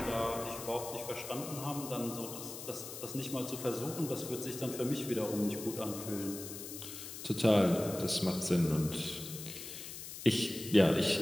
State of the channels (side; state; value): left; noise; hiss, 10 dB below the sound